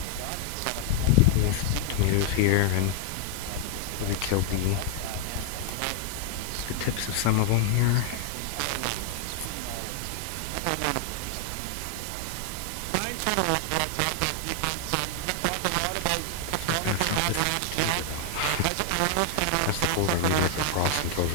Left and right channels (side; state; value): both; different; correlation 0.00